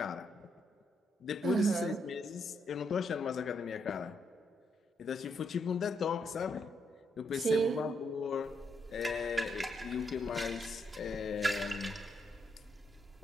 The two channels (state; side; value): normal; both; correlation 0.77